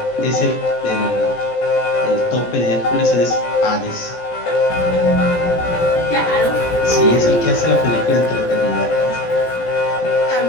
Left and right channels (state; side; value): late; right; 17 ms